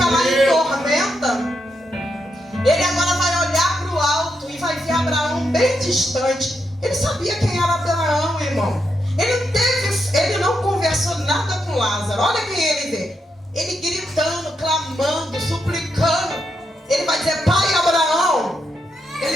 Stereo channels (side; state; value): both; normal; correlation 0.83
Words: lá em tormenta, ele agora vai olhar para o alto e vai ver Abraão bem distante. Ele sabia quem era Abraão, irmão. Ele não conversou nada com Lázaro. Olha quem ele vê. Ele gritando, clamando, suplicando. Ele vai dizer, pai Abraão.